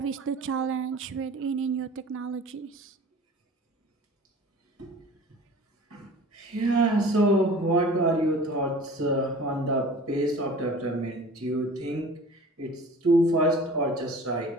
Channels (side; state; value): both; normal; correlation 0.43